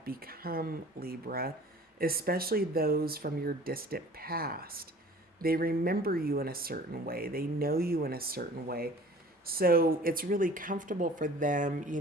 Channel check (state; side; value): normal; both; correlation 0.47